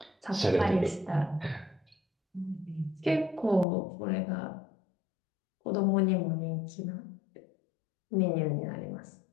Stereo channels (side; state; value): right; drops out; at 3.7 s